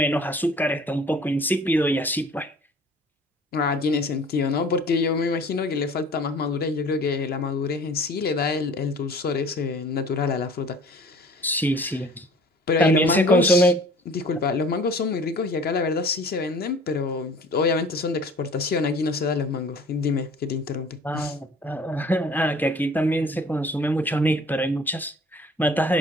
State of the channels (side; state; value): both; normal; correlation 0.48